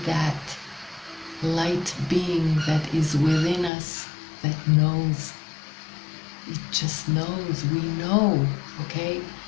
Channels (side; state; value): right; drops out; at 3.7 s